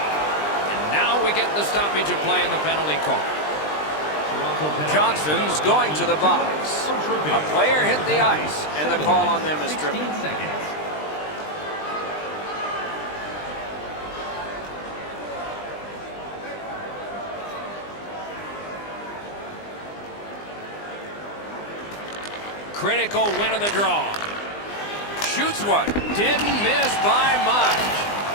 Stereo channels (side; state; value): right; late; 20 ms